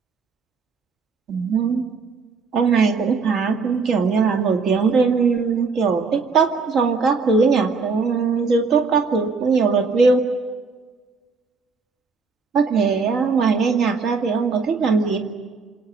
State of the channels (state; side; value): quieter; left; 4.7 dB